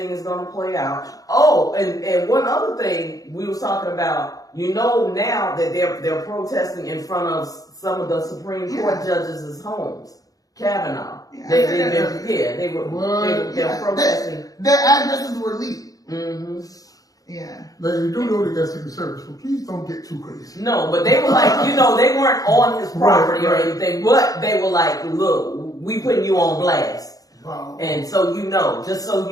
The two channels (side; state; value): right; late; 0.17 ms